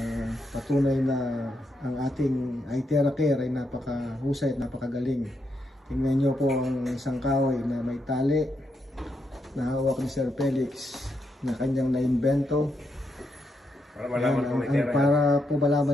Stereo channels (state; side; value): normal; both; correlation 0.81